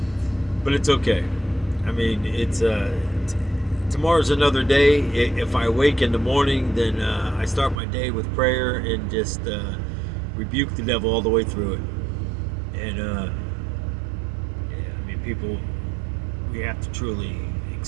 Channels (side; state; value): left; drops out; at 7.8 s